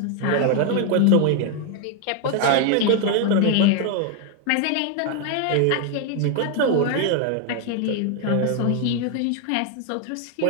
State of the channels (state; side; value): different; both; correlation 0.00